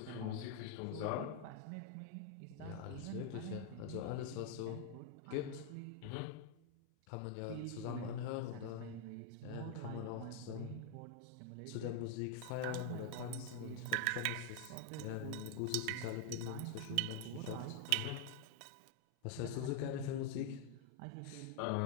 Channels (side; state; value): both; different; correlation 0.00